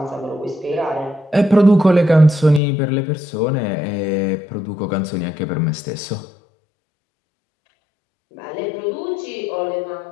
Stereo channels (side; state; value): right; drops out; at 2.6 s